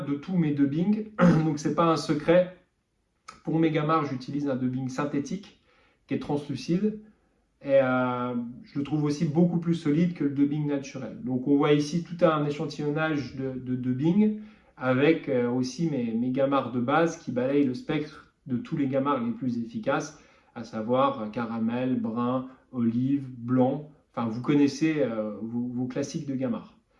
de tous mes dubbings. Donc, c'est pas un secret. Pour mes gamards, j'utilise un dubbing synthétique qui est translucide. Et je le trouve aussi beaucoup plus solide que le dubbing naturel. Donc on voit ici tout un échantillonnage de dubbing avec aussi mes gamards de base qui balayent le spectre de tous les gamards les plus efficaces, à savoir caramel, brun, olive, blanc. Enfin, vous connaissez vos classiques de gamards.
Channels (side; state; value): both; identical; correlation 1.00